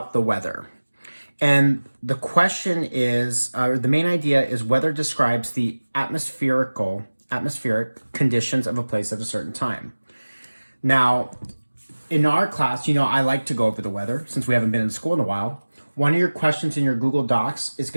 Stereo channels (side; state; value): both; inverted; correlation -1.00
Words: the weather. And the question is, the main idea is weather describes the atmospheric conditions of a place at a certain time. Now, in our class, I like to go over the weather since we haven't been in school in a while. One of your questions in your Google Docs is